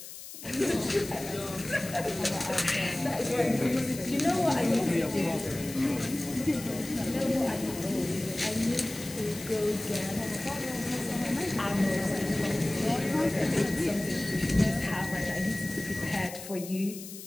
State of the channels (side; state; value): left; noise; hiss, 12 dB below the sound